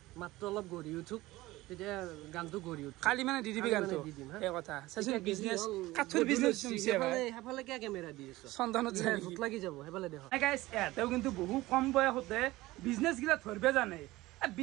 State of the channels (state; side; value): quieter; left; 18.5 dB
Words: মাত্ৰ অলপ গৰি উঠুক তেতিয়া গানটো গৰি উঠ খালি মানে দিদিবি গানটো এই কথা সাচুন বিজনেস কাঠৰ বিজনেস নমছে ভাই হেফালে কি কেমেৰা দি আছে চন্দনত যায় ভূত লাগি যাব হেফালে দেখো গাইস এটাও কিন্তু বহু কম বয়সতে বিজনেস গিলা ধৰবে জানে